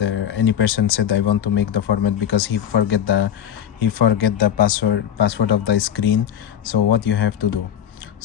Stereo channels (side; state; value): right; quieter; 9.5 dB